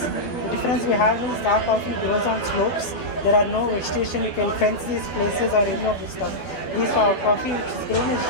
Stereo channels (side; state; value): right; late; 12 ms